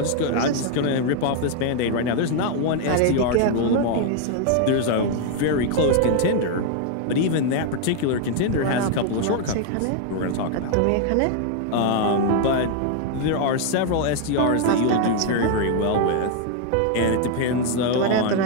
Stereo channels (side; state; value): both; different; correlation 0.00